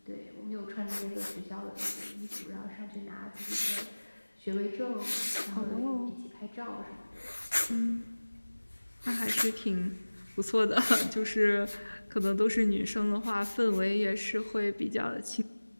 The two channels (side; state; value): both; inverted; correlation -1.00